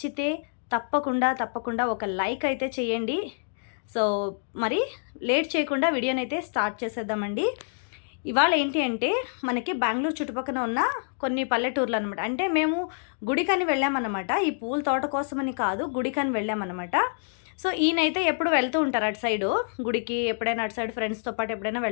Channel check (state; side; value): silent; right; digital silence